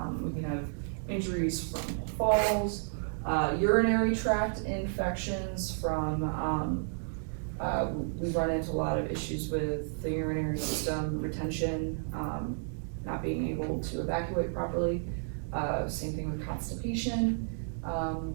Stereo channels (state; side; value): silent; left; digital silence